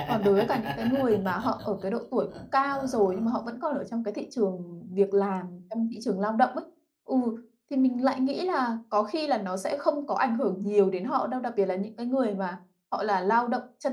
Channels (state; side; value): identical; both; correlation 1.00